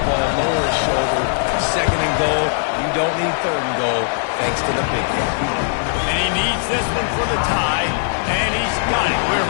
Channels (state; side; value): silent; right; digital silence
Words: lower his shoulder. 2nd and goal. You don't need 3rd and goal, thanks to the big guy. And he needs this one for the tie, and he's got it. We're